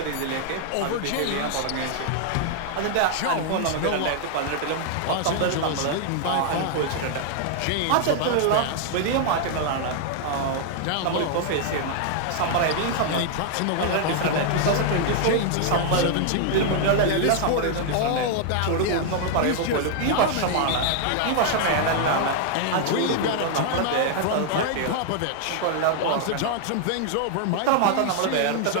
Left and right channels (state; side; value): different; both; correlation 0.00